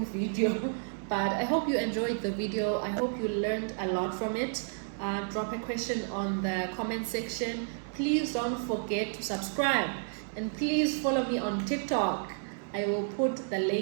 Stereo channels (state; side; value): silent; left; digital silence